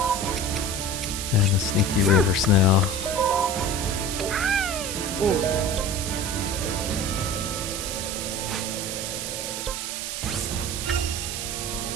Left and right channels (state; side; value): noise; right; hiss, 4 dB below the sound